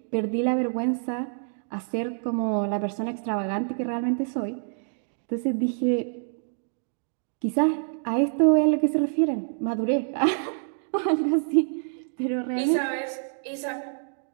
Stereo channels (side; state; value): left; silent; digital silence